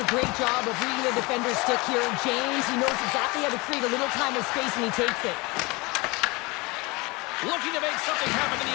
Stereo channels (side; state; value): right; quieter; 25.1 dB